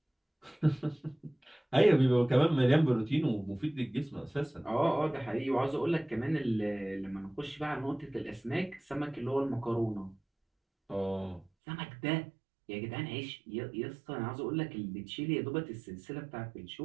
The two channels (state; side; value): drops out; left; at 11.5 s